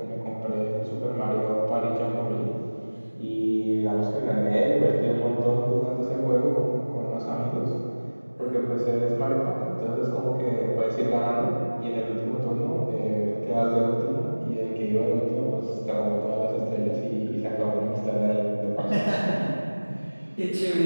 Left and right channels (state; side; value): inverted; both; correlation -1.00